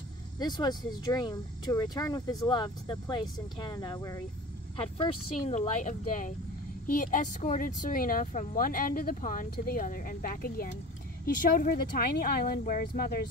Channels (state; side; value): normal; both; correlation 0.38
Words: This was his dream, to return with his love to the place in Canada where he had first seen the light of day. He escorted Serena from one end of the pond to the other and back again. He showed her the tiny island where his